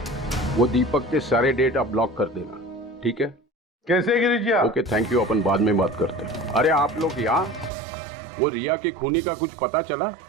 वो दीपक के सारे डेटा ब्लॉक कर देना, ठीक है? कैसे गिरीश जी? ओके, थैंक यू, अपन बाद में बात करते हैं। अरे आप लोग यहाँ, वो रिया के खूनी का कुछ पता चला?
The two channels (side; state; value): left; drops out; at 7.7 s